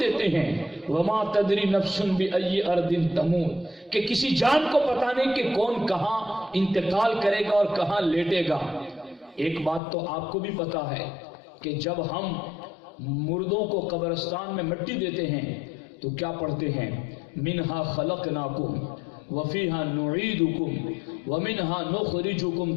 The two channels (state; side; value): drops out; right; at 9.8 s